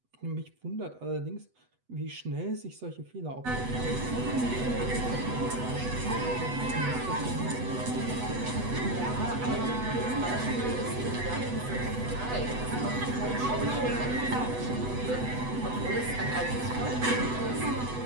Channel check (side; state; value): left; late; 8.0 ms